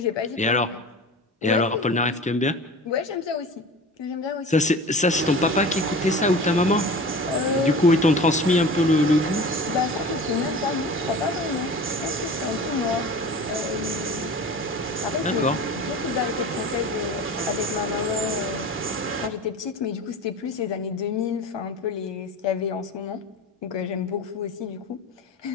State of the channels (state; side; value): normal; both; correlation 0.36